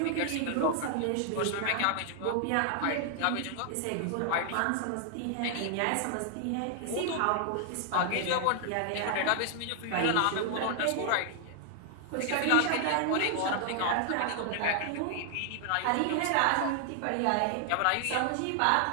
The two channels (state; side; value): different; both; correlation 0.00